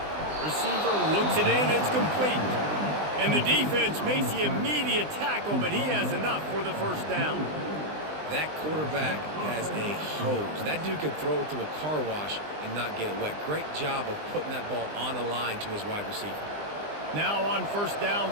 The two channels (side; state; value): left; late; 20 ms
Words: Receiver looks it in, it's complete. And the defense makes the immediate tackle, but he has enough for the first down. That quarterback has a hose. That dude could throw it to a car wash and not get it wet. Great job of putting that ball on a line to his wide receiver. Now on first down